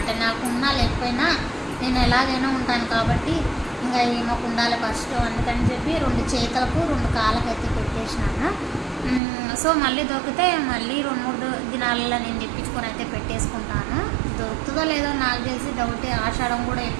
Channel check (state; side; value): drops out; left; at 9.2 s